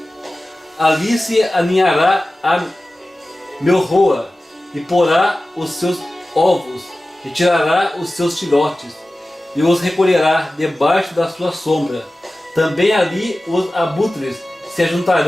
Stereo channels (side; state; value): both; normal; correlation 0.96